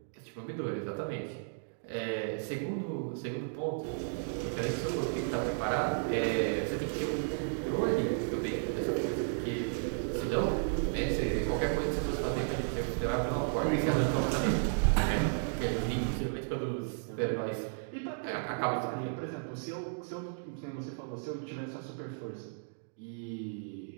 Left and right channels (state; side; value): silent; left; digital silence